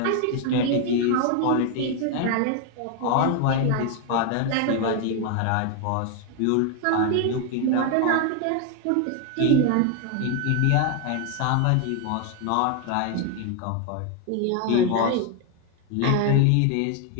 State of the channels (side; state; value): both; different; correlation 0.01